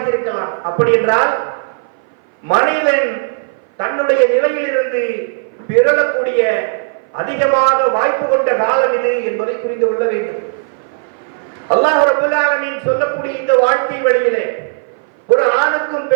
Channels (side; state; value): left; silent; 59 dB below the other